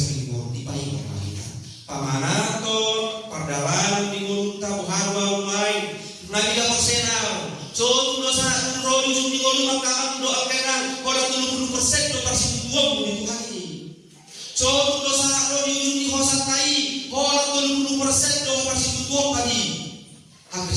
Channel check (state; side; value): identical; both; correlation 1.00